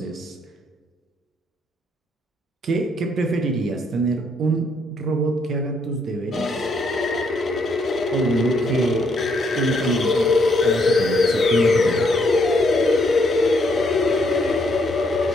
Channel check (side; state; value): both; normal; correlation 0.72